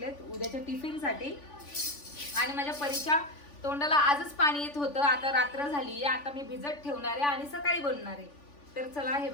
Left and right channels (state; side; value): late; right; 3.5 ms